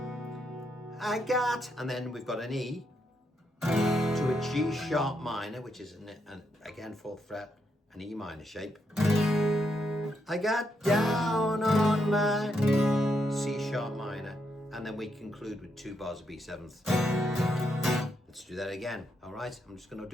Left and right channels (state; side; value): normal; both; correlation 0.79